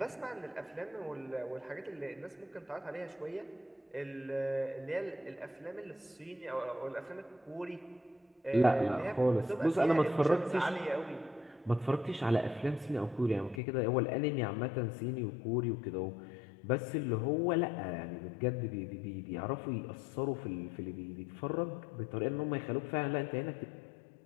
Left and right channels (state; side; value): drops out; right; at 13.6 s